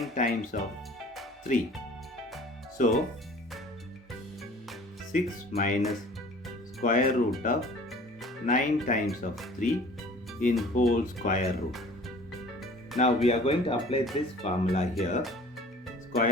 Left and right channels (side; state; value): both; normal; correlation 0.48